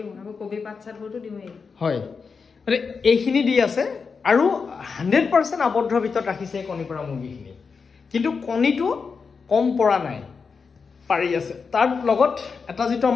আকৌ কবি পাত চাতবোৰতো দিওঁৱেই হয় মানে এইখিনি দি আছে আৰু 100% আবদ্ধ ভিতৰত ৰাখিছে কণী পৰা মুৰ্গীখিনি কিন্তু কণীটো কম পৰা নাই পাৰি আছে তাৰ লগত এটা যেটো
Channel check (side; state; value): right; quieter; 5.3 dB